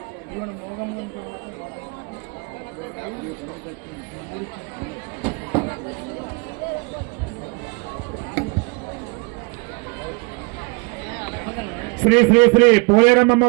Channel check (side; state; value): left; quieter; 29.5 dB